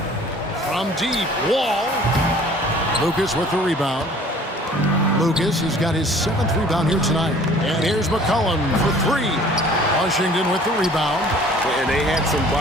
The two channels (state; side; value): normal; both; correlation 0.51